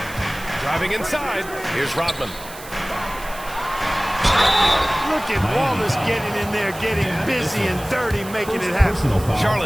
Driving inside. Here's Rodman. Look at Wallace getting in there, getting busy and dirty, making it happen.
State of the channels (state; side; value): noise; right; hiss, 16 dB below the sound